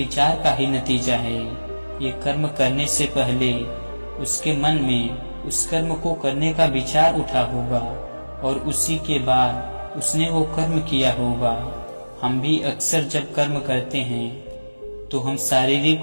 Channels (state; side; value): inverted; both; correlation -1.00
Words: का ही नतीजा है। ये कर्म करने से पहले उसके मन में उस कर्म को करने का विचार उठा होगा और उसी के बाद उसने वो कर्म किया होगा। हम भी अक्सर जब कर्म करते हैं तो हम शारीरिक